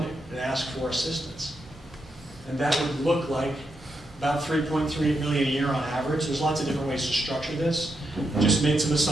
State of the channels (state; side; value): normal; both; correlation 0.83